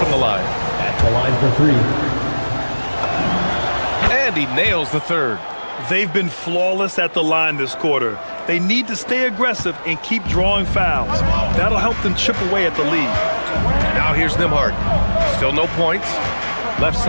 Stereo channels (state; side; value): inverted; both; correlation -1.00